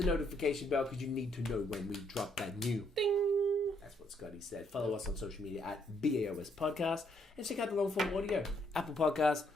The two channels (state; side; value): normal; both; correlation 0.71